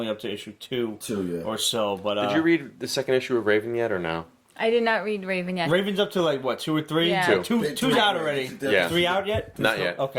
up to issue 2 or so. But did you read the second issue of Raven yet or no? I did not read Raven yet. Raven's up to 2 or 3? Yeah. Two's out already. Yeah. 3 out yet? Not yet.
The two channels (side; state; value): both; identical; correlation 1.00